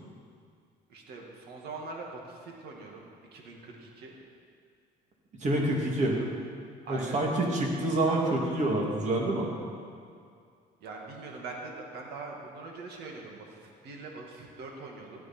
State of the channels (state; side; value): normal; both; correlation 0.52